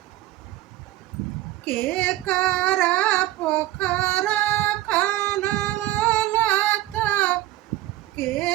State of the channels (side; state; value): left; quieter; 15.8 dB